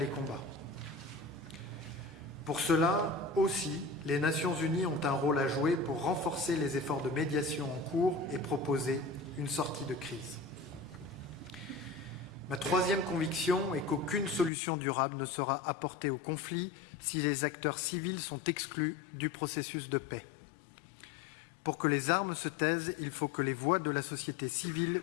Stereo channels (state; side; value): drops out; right; at 14.5 s